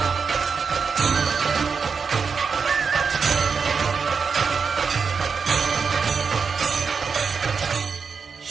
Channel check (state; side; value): quieter; left; 5.5 dB